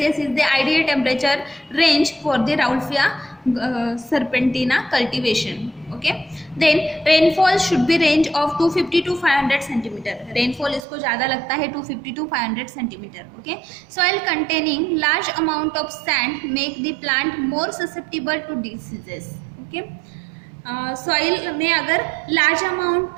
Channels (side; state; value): left; drops out; at 10.9 s